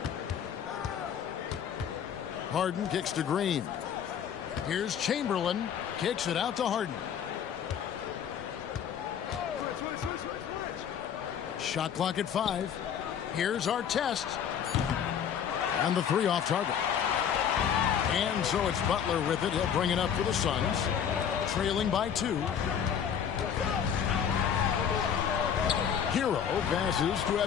Harden kicks to Green. Here's Chamberlain. Kicks it out to Harden. Shot clock at 5. Here's our test. And the 3 off target. And so it's Butler with it. He'll bring it up for the Suns. Trailing by 2. Hero passes to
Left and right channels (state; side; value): quieter; right; 8.3 dB